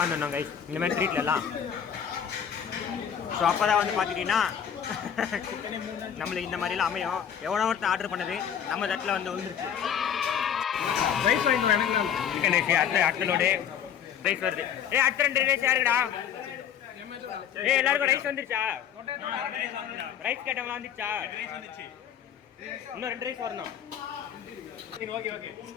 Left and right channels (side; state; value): right; quieter; 8.8 dB